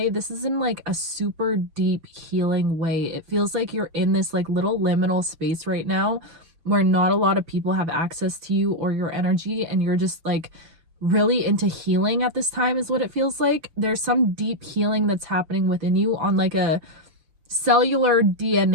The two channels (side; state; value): left; late; 6.7 ms